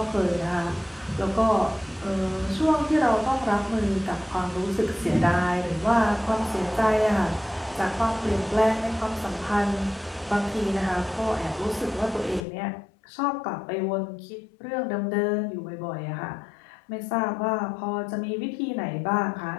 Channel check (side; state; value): right; drops out; at 12.4 s